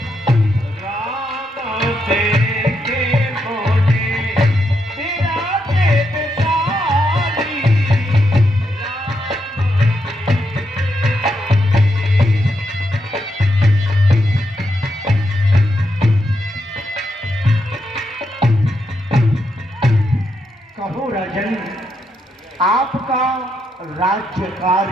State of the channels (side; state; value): both; normal; correlation 0.81